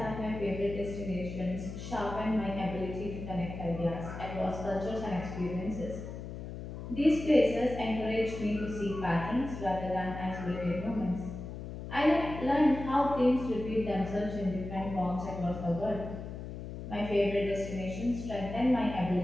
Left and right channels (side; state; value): left; noise; hum, 9 dB below the sound